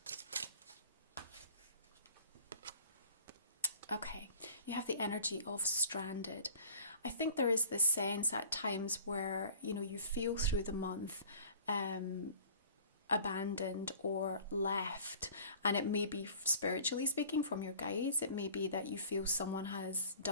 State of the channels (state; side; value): inverted; both; correlation -0.47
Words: Okay, you have the energy of stranded. I think there is this sense at times where, you feel through the month abandoned or left, and it may be, spiritually speaking, from your guides. It may be that you feel someone has